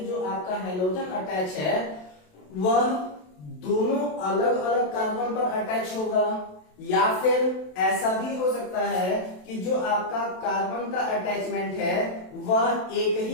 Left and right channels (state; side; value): late; right; 27 ms